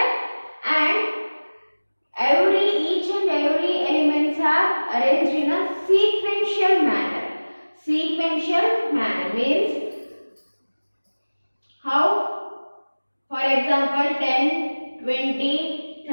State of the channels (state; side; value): inverted; both; correlation -1.00